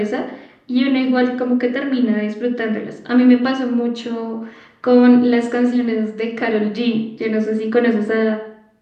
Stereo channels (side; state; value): both; identical; correlation 1.00